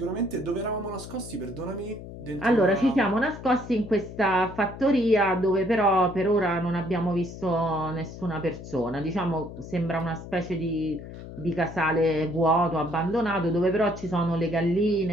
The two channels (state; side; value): noise; left; hum, 13 dB below the sound